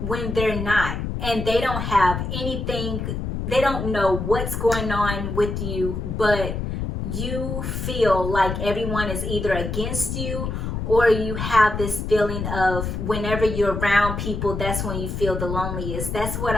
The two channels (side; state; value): left; noise; rumble, 4 dB below the sound